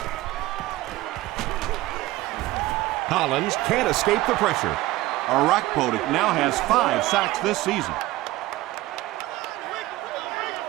Collins can't escape the pressure. Arakpo now has 5 sacks this season.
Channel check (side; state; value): left; quieter; 17.7 dB